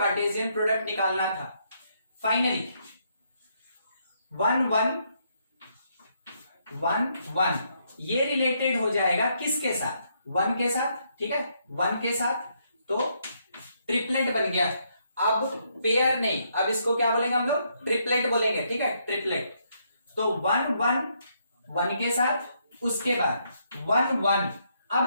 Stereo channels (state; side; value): inverted; both; correlation -0.75